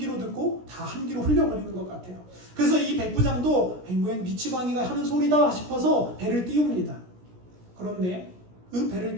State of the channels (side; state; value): left; late; 17 ms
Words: 듣고 다 한 귀로 흘려버리는 것 같아요. 그래서 이 백부장도 미치광이가 하는 소리다 싶어서 배를 띄웁니다. 그런데 그 배를